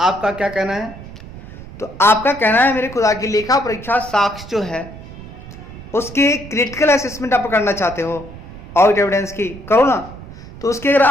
क्या कहना है? तो आपका कहना है मेरे खुदा की लेखा परीक्षा साक्ष्य जो है उसके क्रिटिकल असेसमेंट आप करना चाहते हो, ऑडिट एविडेंस की करो ना। तो उसके अगर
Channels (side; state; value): right; noise; rumble, 15 dB below the sound